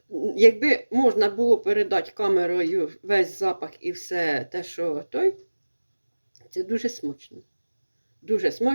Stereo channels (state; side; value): inverted; both; correlation -1.00